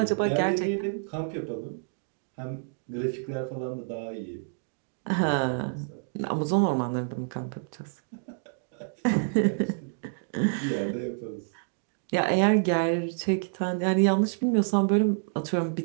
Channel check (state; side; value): silent; left; digital silence